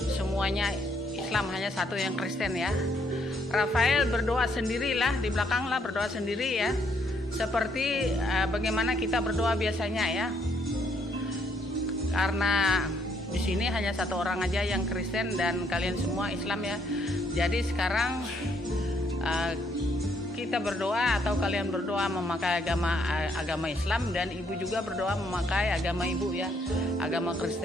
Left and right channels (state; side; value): normal; both; correlation 0.71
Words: semuanya Islam, hanya satu yang Kristen ya. Rafael berdoa sendirilah, di belakang lah berdoa sendiri ya, seperti bagaimana kita berdoa biasanya ya. Karena di sini hanya satu orang aja yang Kristen dan kalian semua Islam ya. Jadi sekarang kita berdoa atau kalian berdoa memakai agama Islam, dan Ibu juga berdoa memakai agama Ibu ya, agama